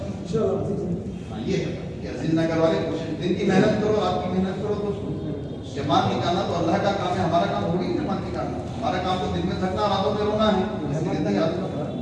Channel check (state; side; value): identical; both; correlation 1.00